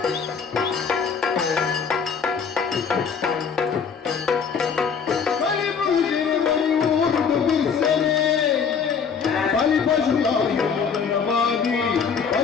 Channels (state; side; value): quieter; right; 6.3 dB